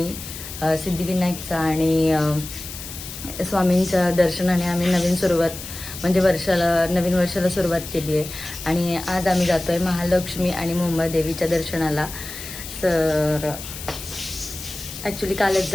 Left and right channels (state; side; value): noise; left; hiss, 11 dB below the sound